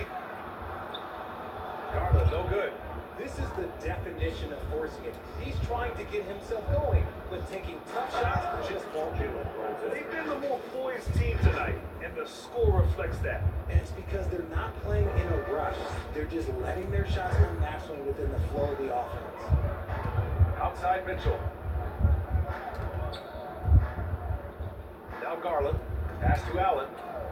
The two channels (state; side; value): identical; both; correlation 1.00